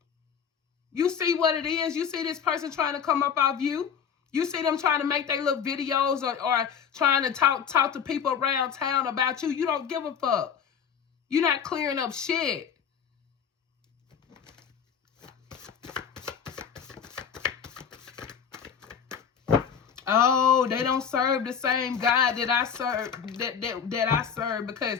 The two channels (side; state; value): right; quieter; 7.3 dB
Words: You see what it is. You see this person trying to come up off you. You see them trying to make their little videos or trying to talk to people around town about you. You don't give a fuck. You're not clearing up shit. Oh, they don't serve the same God that I serve that I serve because